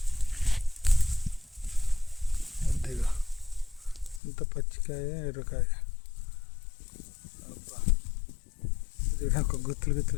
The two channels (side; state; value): right; drops out; at 4.2 s